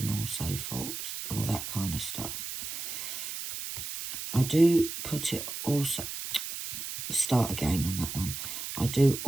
also forth, all that kind of stuff. I do put it also, start again on that one. I do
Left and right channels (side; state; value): right; noise; hiss, 6 dB below the sound